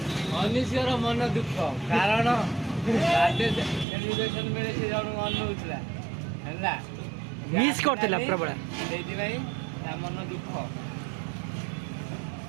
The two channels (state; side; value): drops out; left; at 3.9 s